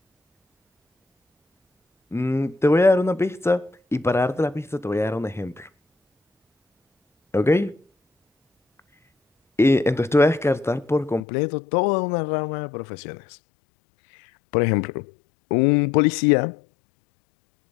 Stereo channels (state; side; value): drops out; right; at 11.2 s